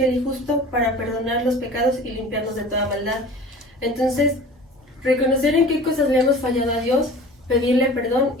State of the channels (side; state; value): both; normal; correlation 0.41